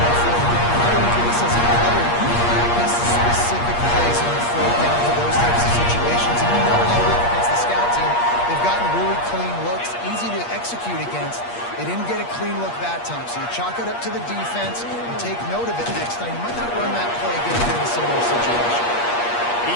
alert to the defense and take note of it next time. You might not run that play again in a similar situation. He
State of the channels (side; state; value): right; late; 8.5 ms